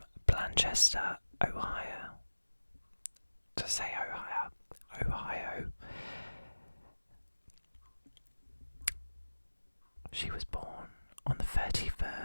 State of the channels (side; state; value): both; inverted; correlation -1.00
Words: Blanchester, Ohio. To say Ohio. She was born on the